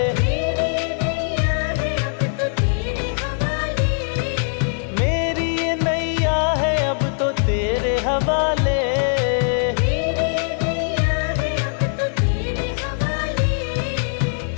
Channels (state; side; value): silent; right; 65 dB below the other